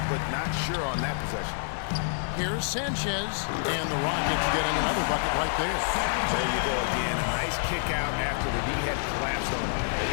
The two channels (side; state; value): right; silent; digital silence